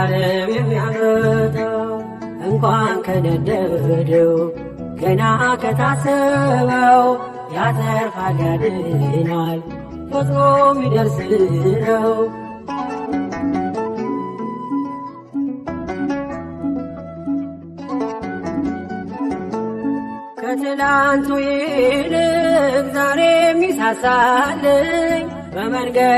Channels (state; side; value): identical; both; correlation 1.00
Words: የሚያመጣ እንኳን ከነደደው ገና ከታሰበው ያተርፋል ያድናል ፈጥኖ የሚደርስ ነው። ከትላንቱ ይልቅ ዛሬ የሚሳሳልኝ